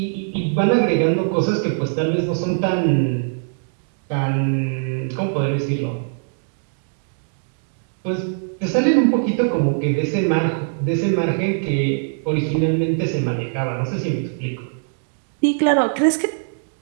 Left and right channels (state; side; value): silent; left; digital silence